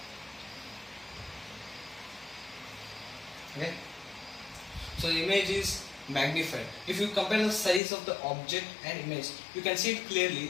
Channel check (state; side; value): drops out; right; at 7.8 s